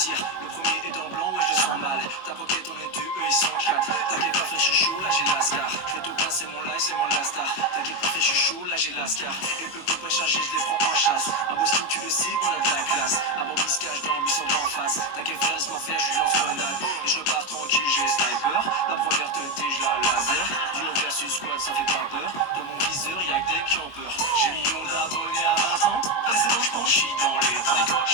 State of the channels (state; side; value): late; right; 22 ms